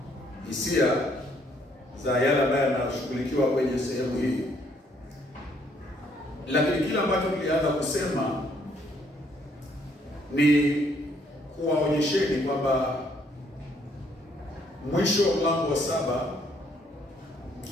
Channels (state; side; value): normal; both; correlation 0.67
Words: hisia za yale ambayo yanashughulikiwa kwenye sehemu hii. Lakini kila ambacho tulianza kusema ni kuwaonyesheni kwamba mwisho wa mlango wa 7